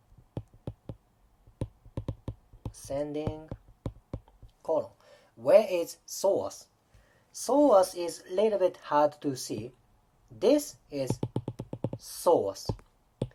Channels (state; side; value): identical; both; correlation 1.00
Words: Ascending colon. Where is psoas? Psoas is a little bit hard to see. This is psoas.